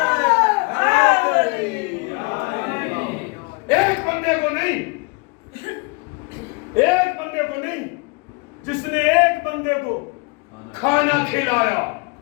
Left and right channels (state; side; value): quieter; right; 29.8 dB